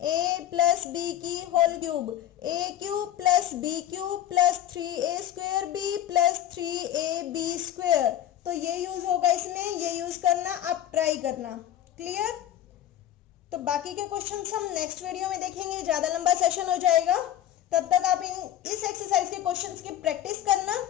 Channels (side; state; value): right; quieter; 11.6 dB